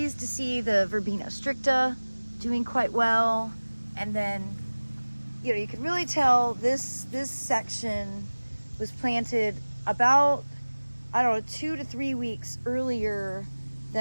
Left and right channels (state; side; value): inverted; both; correlation -1.00